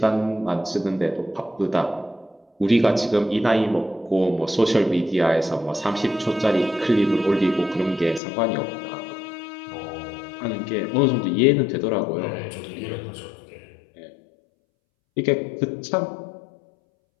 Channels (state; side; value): drops out; right; at 8.2 s